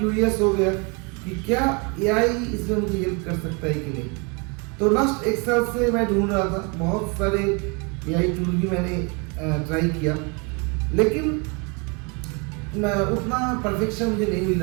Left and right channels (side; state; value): left; quieter; 31.5 dB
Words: हो गया कि क्या एआई इसमें मुझे हेल्प कर सकता है कि नहीं। तो लास्ट एक साल से मैं ढूंढ रहा था, बहुत सारे एआई टूल भी मैंने ट्राई किया, लेकिन उतना परफेक्शन मुझे नहीं मिल